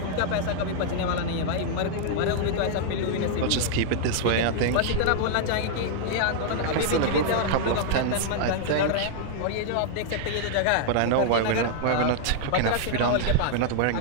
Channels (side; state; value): both; different; correlation -0.01